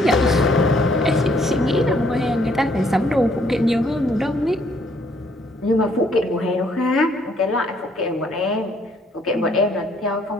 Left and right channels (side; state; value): both; normal; correlation 0.66